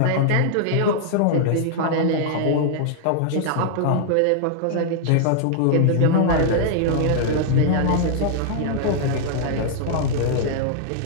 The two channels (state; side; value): different; both; correlation -0.01